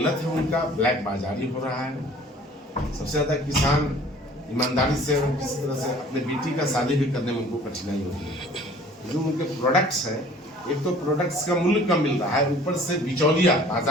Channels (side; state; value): both; normal; correlation 0.51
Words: है उनका, ब्लैक बाजारी हो रहा है। सबसे ज्यादा किसान ईमानदारी से और किसी तरह से अपने बेटी का शादी भी करने में उनको कठिनाई होती है। जो उनके प्रोडक्ट्स हैं, एक तो प्रोडक्ट्स का मूल्य कम मिल रहा है, ऊपर से बिचौलिया,